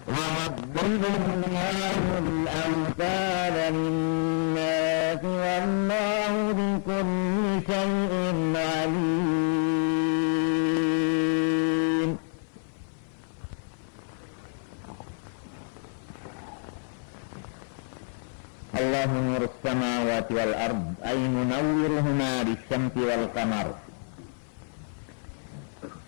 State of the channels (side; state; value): right; silent; 55 dB below the other